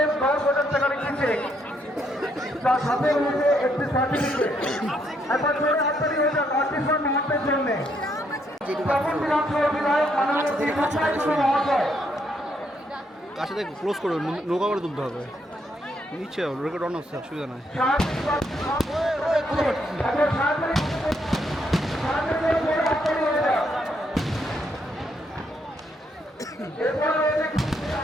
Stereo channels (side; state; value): both; normal; correlation 0.74